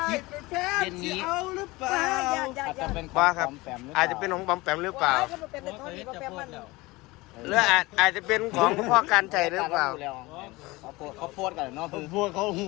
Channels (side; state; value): right; quieter; 21.6 dB